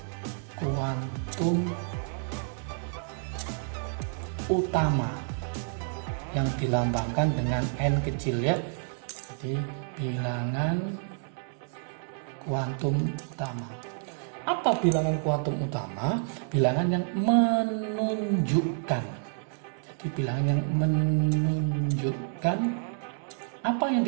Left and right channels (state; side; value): silent; left; 58 dB below the other